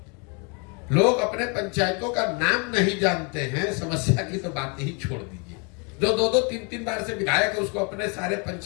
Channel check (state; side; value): quieter; right; 33.8 dB